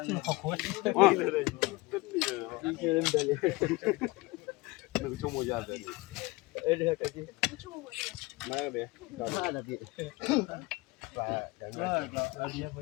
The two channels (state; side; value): quieter; right; 22.8 dB